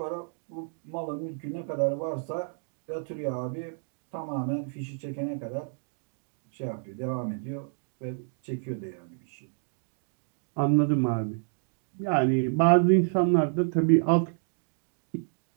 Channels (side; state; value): left; silent; 58 dB below the other